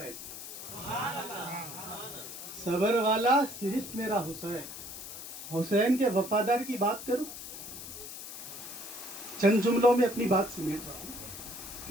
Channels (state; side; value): noise; left; hiss, 10 dB below the sound